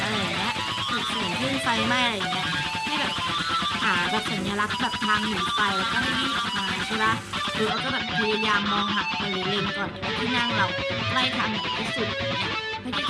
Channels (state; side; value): identical; both; correlation 1.00